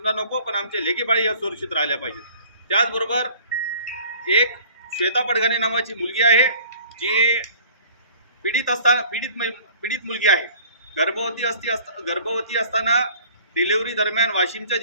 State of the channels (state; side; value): inverted; both; correlation -0.50